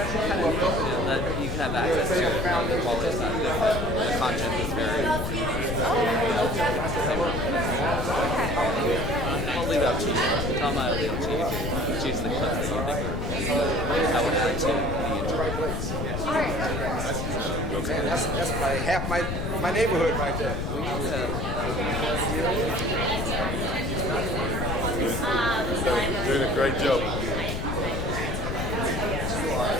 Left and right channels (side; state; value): left; noise; rumble, 2 dB below the sound